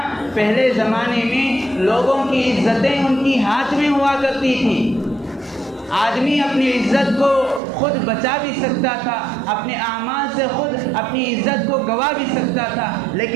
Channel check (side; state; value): left; drops out; at 7.6 s